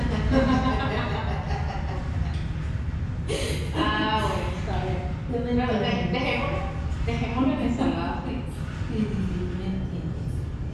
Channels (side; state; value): both; identical; correlation 1.00